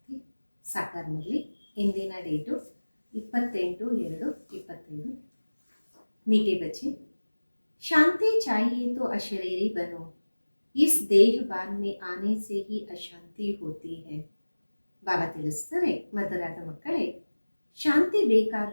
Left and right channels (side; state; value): both; inverted; correlation -1.00